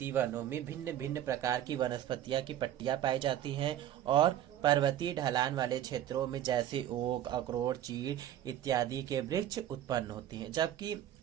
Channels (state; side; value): quieter; left; 11.6 dB